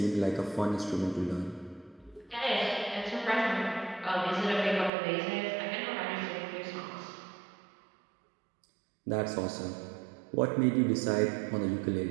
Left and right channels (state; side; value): drops out; left; at 4.9 s